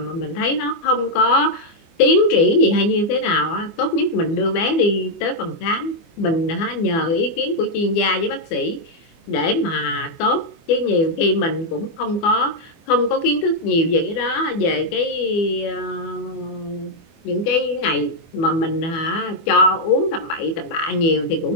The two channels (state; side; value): late; right; 24 ms